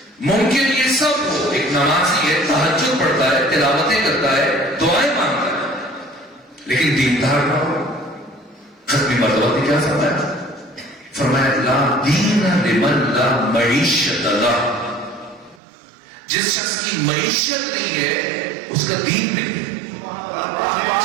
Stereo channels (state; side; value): drops out; left; at 15.6 s